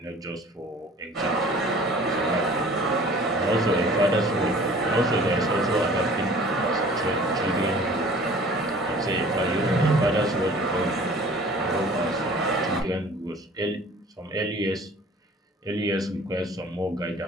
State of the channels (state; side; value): normal; both; correlation 0.48